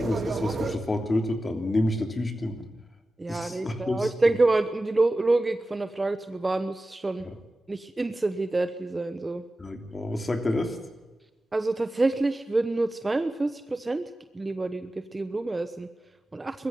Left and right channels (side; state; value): both; normal; correlation 0.94